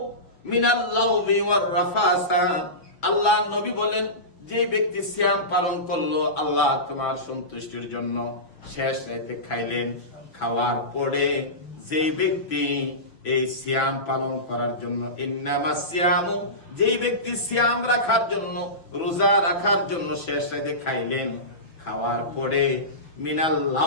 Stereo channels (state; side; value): late; right; 6.0 ms